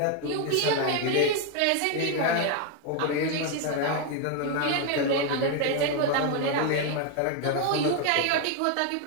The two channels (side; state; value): both; different; correlation 0.01